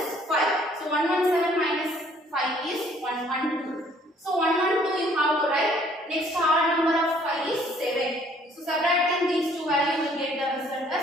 5. So 117 minus 5 is 112. So 112 you have to write. Next odd number of 5 is 7. So subtracting these two values you will get the result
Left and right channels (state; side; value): normal; both; correlation 0.60